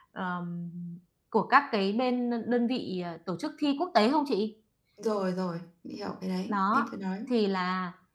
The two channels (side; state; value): both; identical; correlation 1.00